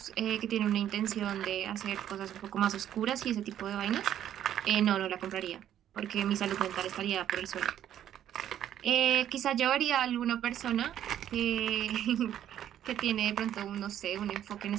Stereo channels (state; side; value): quieter; left; 10.9 dB